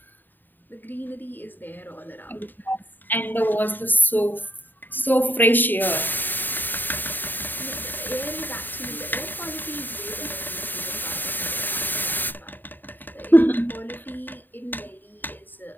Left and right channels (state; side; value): late; right; 0.091 ms